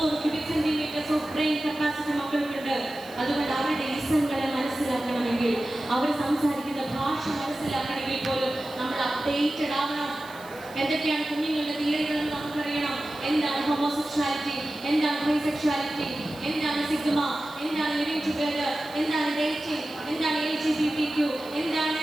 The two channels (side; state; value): right; noise; hiss, 21 dB below the sound